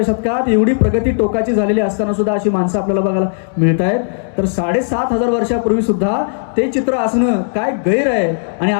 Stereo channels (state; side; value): silent; right; digital silence